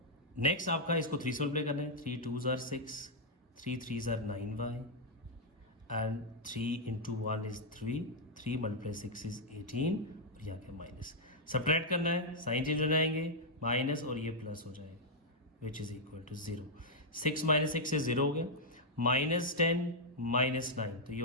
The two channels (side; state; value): both; normal; correlation -0.05